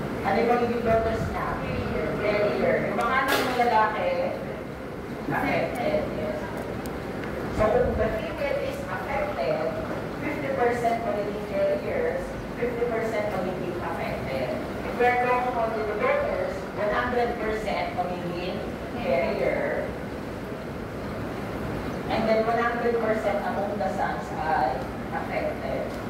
ano yung magiging daughters niya? Carrier. Yung mga anak ng lalaki, affected. Yes. So kung the female is affected, 50% magiging carriers, 50% magiging affected. If we're talking about the daughters, 100% magiging carrier. And then 100% among the sons ay affected.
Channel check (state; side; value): identical; both; correlation 1.00